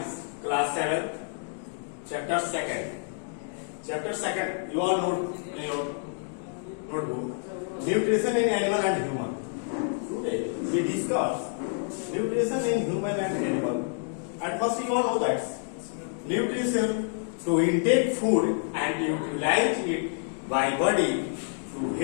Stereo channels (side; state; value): right; silent; 59 dB below the other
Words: class 7, chapter 2nd. Chapter 2nd, you all know in your notebook, nutrition in animal and human. Today we discuss nutrition in human and animal. At first you all know that nutrition to intake food and utilize it by body to